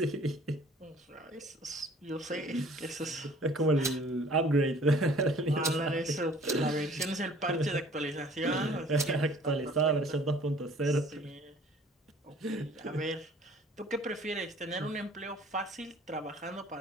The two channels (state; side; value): normal; both; correlation 0.52